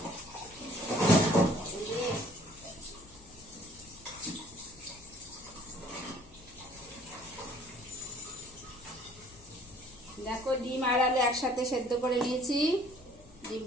দেখো ডিম আর আলু একসাথে সেদ্ধ করে নিয়েছি।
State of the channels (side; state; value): left; noise; hum, 23 dB below the sound